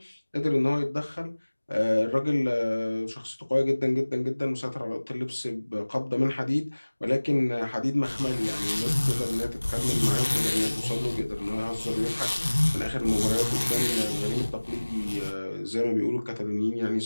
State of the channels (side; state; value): both; inverted; correlation -1.00